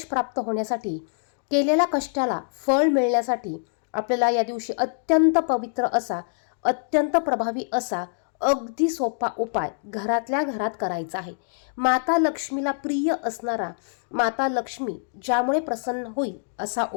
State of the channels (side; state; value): right; silent; digital silence